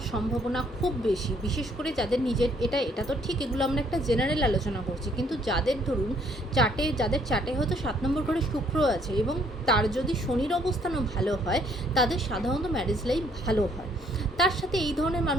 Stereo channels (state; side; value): normal; both; correlation 0.65